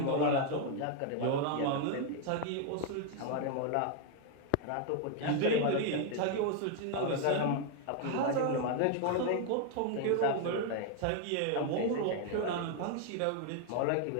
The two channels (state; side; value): different; both; correlation 0.00